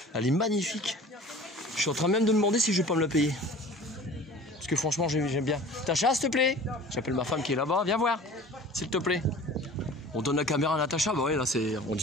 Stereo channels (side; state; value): both; normal; correlation 0.43